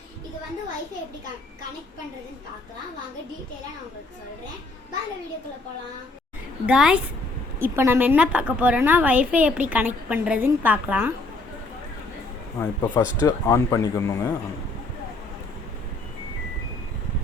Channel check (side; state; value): right; quieter; 3.1 dB